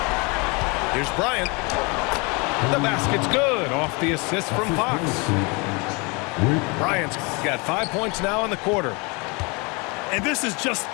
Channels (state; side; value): quieter; right; 29.1 dB